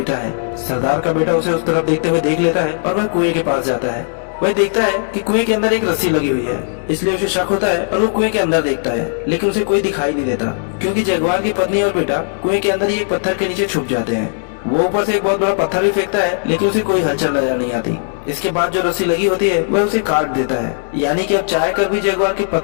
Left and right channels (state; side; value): silent; right; 68 dB below the other